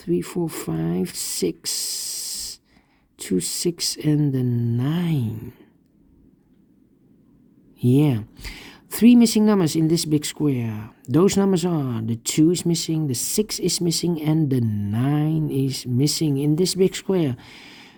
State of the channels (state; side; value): identical; both; correlation 1.00